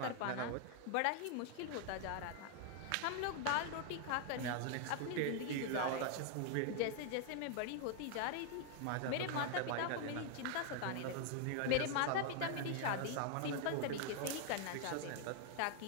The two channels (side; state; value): both; different; correlation 0.00